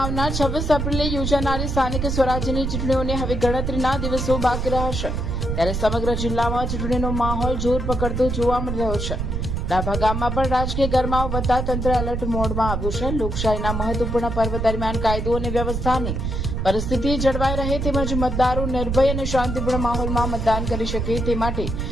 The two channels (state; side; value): noise; right; rumble, 2 dB below the sound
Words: આવનાર 26 એપ્રિલે યોજાનારી સ્થાનિક સ્વરાજ્યની ચૂંટણીઓને હવે ગણતરીના દિવસો બાકી રહ્યા છે, ત્યારે સમગ્ર જિલ્લામાં ચૂંટણીનો માહોલ જોર પકડતો જોવા મળી રહ્યો છે. ડાભા ગામમાં પણ રાજકીય ગરમાવો વધતા તંત્ર એલર્ટ મોડમાં આવ્યું છે. લોકશાહીના મહત્વપૂર્ણ પર્વ દરમિયાન કાયદો અને વ્યવસ્થાની પરિસ્થિતિ જળવાઈ રહે તેમજ મતદારો નિર્ભય અને શાંતિપૂર્ણ માહોલમાં મતદાન કરી શકે તે માટે